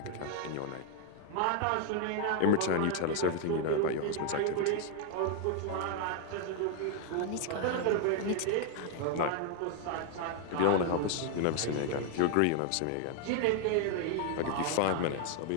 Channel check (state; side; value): different; both; correlation 0.00